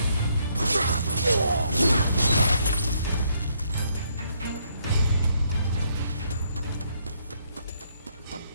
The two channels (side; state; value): both; inverted; correlation -0.72